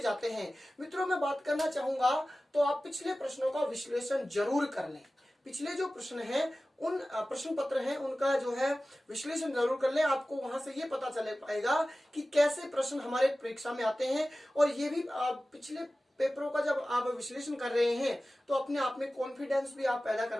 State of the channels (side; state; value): both; normal; correlation 0.96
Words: हैं। मित्रों, मैं बात करना चाहूंगा तो आप पिछले प्रश्नों का विश्लेषण जरूर कर लें। पिछले जो प्रश्न हैं, उन प्रश्न पत्र हैं, उनका जो है विश्लेषण जरूर कर लें। आपको वहां से ये पता चल पाएगा कि कैसे प्रश्न हमारे परीक्षा में आते हैं। और ये भी पिछले पेपरों का जब आप विश्लेषण कर रहे हैं तो अपने आप में कॉन्फिडेंस भी आप पैदा कर